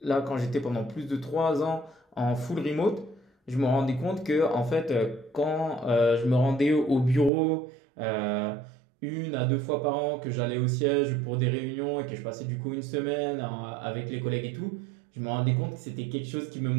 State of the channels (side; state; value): left; drops out; at 7.3 s